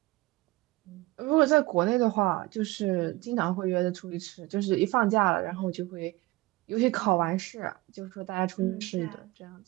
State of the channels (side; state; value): left; quieter; 20.7 dB